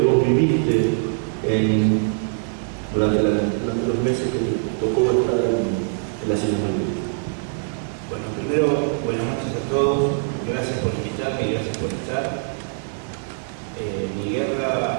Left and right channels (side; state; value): left; silent; 64 dB below the other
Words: vos viviste durante los meses que te tocó estar en las Islas Malvinas? Bueno, primero, buenas noches a todos. Gracias por invitarme y gracias por estar. Mi